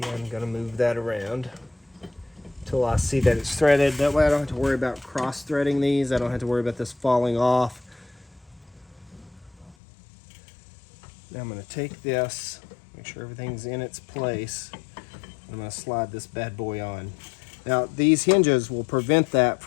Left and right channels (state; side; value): drops out; right; at 9.8 s